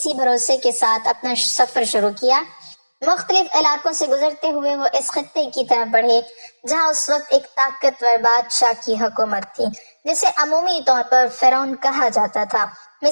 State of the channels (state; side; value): inverted; both; correlation -1.00